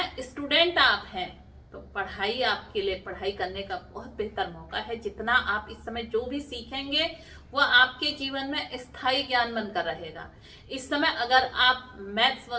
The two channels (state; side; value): identical; both; correlation 1.00